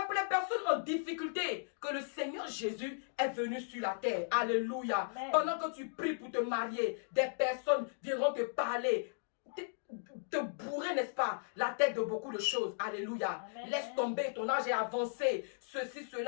pour les personnes en difficulté que le Seigneur Jésus est venu sur la terre. Alléluia. Amen. Pendant que tu pries pour te marier, des personnes viendront te parler, te bourrer, n'est-ce pas, la tête de beaucoup de choses. Alléluia. Amen. Laisse tomber, ton âge est avancé. Ceci,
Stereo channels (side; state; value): right; silent; digital silence